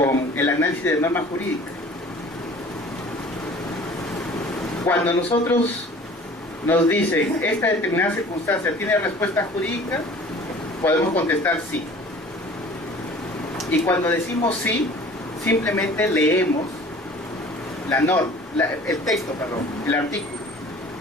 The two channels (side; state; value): both; normal; correlation 0.47